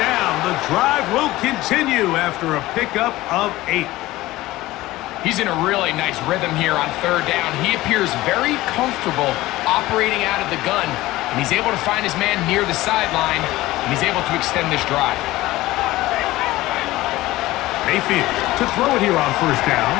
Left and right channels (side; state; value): right; quieter; 17.7 dB